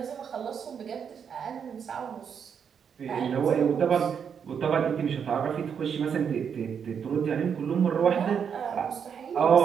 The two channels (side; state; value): left; quieter; 7.3 dB